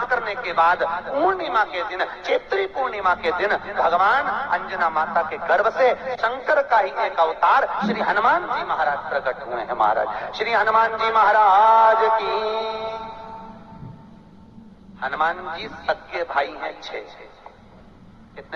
करने के बाद पूर्णिमा के दिन, चैत्री पूर्णिमा के दिन, भगवान अंजना माता के गर्भ से शंकर का ही एक अवतार श्री हनुमान जी महाराज प्रकट हुए हैं। महाराज श्री हनुमान जी महाराज की। हनुमान जी सगे भाई हैं 6।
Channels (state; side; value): identical; both; correlation 1.00